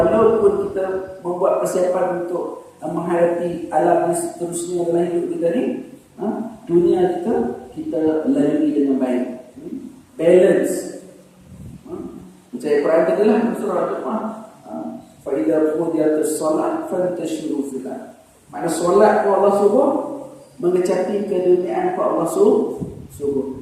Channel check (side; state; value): both; identical; correlation 1.00